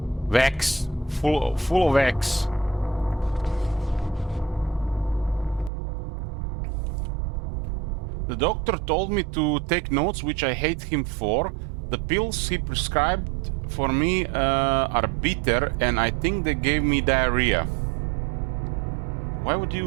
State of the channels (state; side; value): drops out; left; at 5.7 s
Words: Wax. Full of wax. The doctor told me to take notes, which I hate him for. The pills he prescribed for me are bitter, and I think they gave me diarrhea. Why would